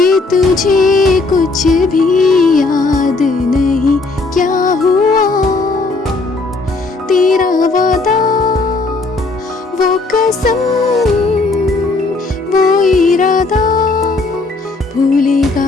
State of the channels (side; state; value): right; quieter; 3.5 dB